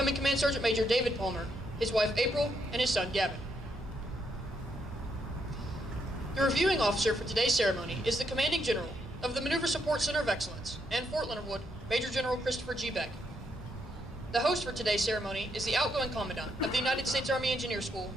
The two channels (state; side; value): normal; both; correlation 0.77